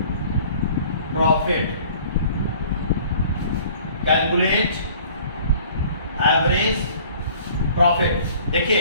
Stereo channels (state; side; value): inverted; both; correlation -0.51